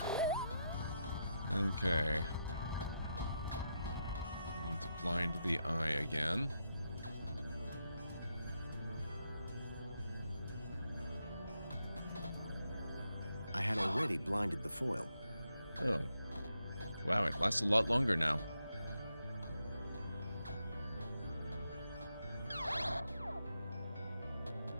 Okay. Need to blind the eye again. I had already blinded the foil. Oh. Wow, it lasts a lot longer now.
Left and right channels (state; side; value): inverted; both; correlation -0.83